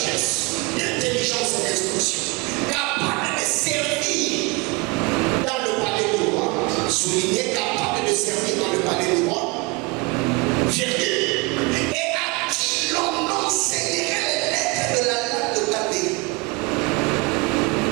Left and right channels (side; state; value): left; quieter; 26.9 dB